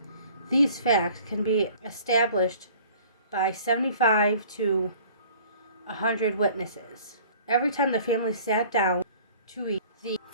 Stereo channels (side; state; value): both; inverted; correlation -0.50